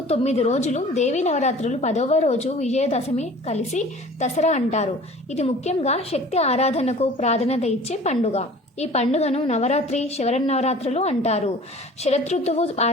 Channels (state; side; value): normal; both; correlation 0.45